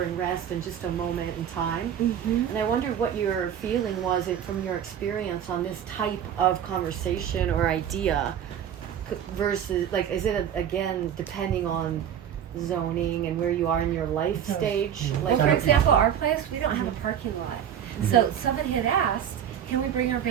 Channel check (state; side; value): quieter; left; 9.3 dB